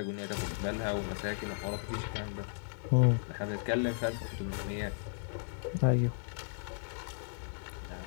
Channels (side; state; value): right; silent; digital silence